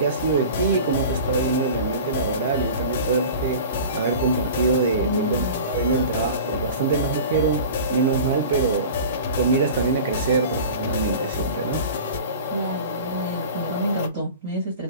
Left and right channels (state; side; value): inverted; both; correlation -0.37